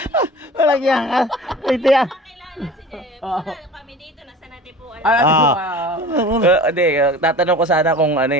walang yan. Ito yan. Kami dito, nasa natin po. Hindi, tatanong ko sana kung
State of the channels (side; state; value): both; normal; correlation 0.39